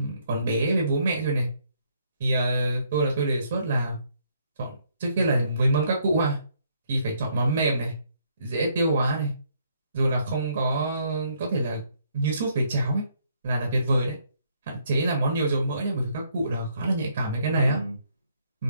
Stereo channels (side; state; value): both; inverted; correlation -0.70